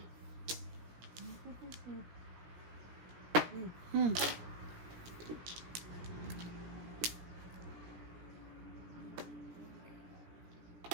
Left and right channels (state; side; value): late; left; 17 ms